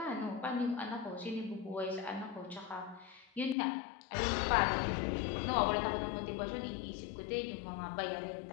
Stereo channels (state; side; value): drops out; right; at 3.6 s